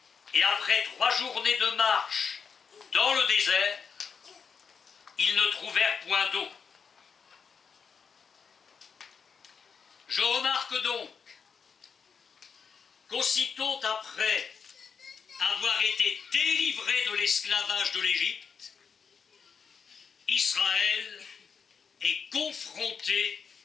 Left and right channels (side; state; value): right; quieter; 6.1 dB